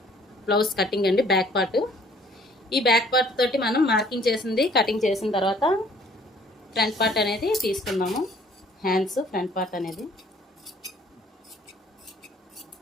బ్లౌజ్ కటింగ్ అండి, బ్యాక్ పార్ట్. ఈ బ్యాక్ పార్ట్ తోటి మనం మార్కింగ్ చేసింది కటింగ్ చేసిన తర్వాత ఫ్రంట్ పార్ట్ అనేది తీసుకుందాము. హ్యాండ్స్ ఫ్రంట్ పార్ట్ అనేది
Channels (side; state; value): both; normal; correlation 0.57